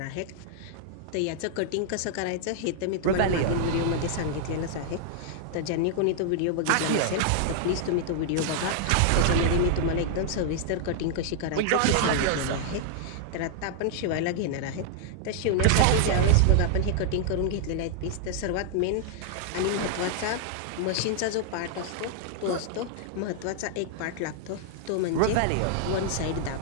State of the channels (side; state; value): both; different; correlation -0.01